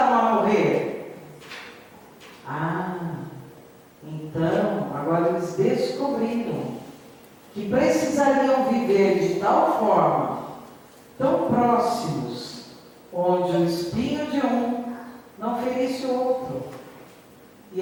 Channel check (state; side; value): identical; both; correlation 1.00